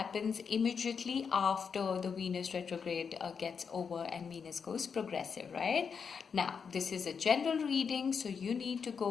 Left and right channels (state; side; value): quieter; right; 6.2 dB